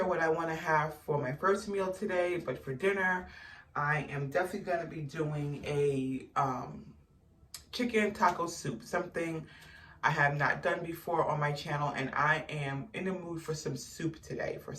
what I want to have for my first meal today, but for dinner, I am definitely going to be doing a chicken taco soup, something I have not done before on my channel, and I am in the mood for some soup today. For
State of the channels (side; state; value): both; identical; correlation 1.00